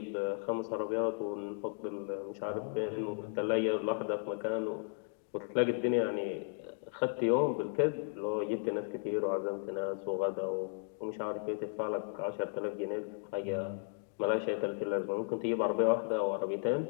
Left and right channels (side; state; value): right; silent; 54 dB below the other